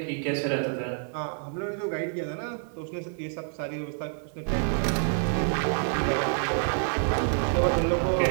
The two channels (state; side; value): silent; left; 57 dB below the other